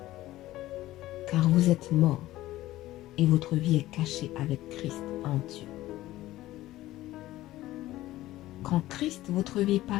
Car vous êtes morts et votre vie est cachée avec Christ en Dieu. Quand Christ, votre vie,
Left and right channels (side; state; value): right; quieter; 15.9 dB